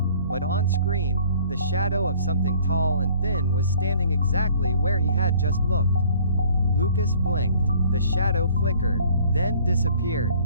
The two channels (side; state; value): both; inverted; correlation -0.55